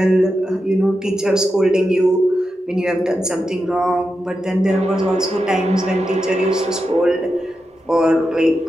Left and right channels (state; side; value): normal; both; correlation 0.89